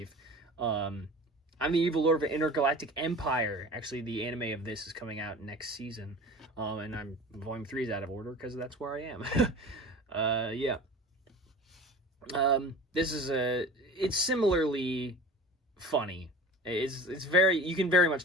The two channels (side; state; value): both; normal; correlation 0.38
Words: I'm the Evil Lord of an Intergalactic Empire. Actually, the anime of this is coming out next season. And volume 3 is out of order because that's where I am. Yeah. This is it's similarly funny. It's very, you can very much